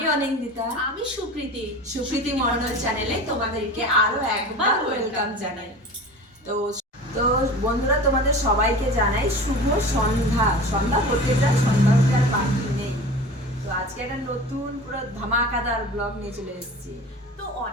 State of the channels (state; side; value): normal; both; correlation 0.36